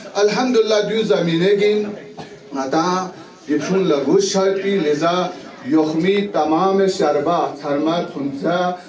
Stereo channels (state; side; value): identical; both; correlation 1.00